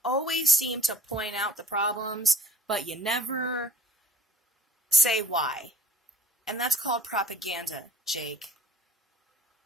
always seem to point out the problems, but you never say why. And that's called propaganda, Jake.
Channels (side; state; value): both; normal; correlation 0.51